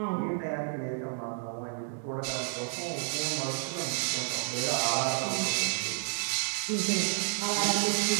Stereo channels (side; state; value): left; silent; 57 dB below the other